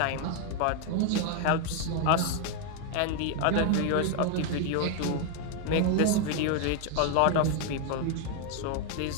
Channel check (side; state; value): both; different; correlation 0.01